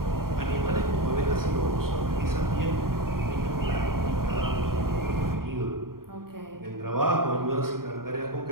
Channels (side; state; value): left; late; 0.93 ms